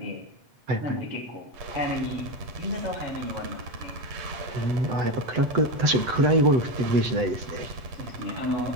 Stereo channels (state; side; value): late; left; 7.9 ms